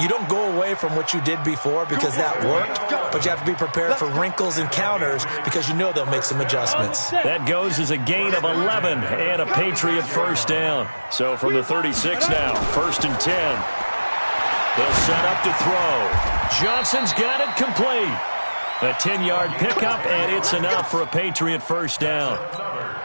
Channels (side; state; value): both; inverted; correlation -1.00